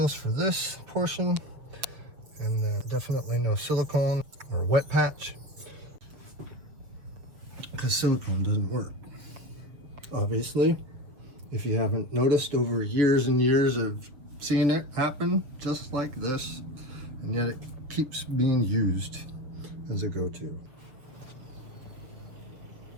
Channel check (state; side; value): late; left; 7.2 ms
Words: for this portion, and then definitely no silicone or wet patch, because silicone doesn't work. Obviously, if you haven't noticed over years and years of seeing it happen just like this, and yet it keeps being used as a go-to.